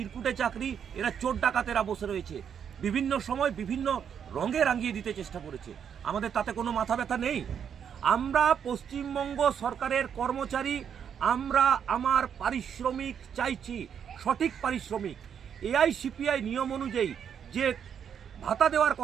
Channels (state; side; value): quieter; left; 8.0 dB